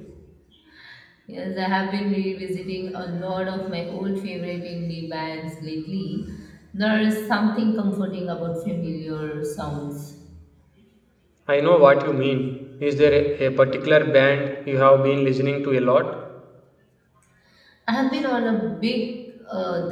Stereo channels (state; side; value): identical; both; correlation 1.00